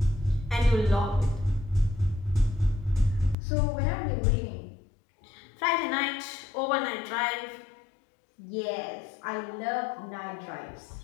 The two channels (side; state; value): right; drops out; at 3.4 s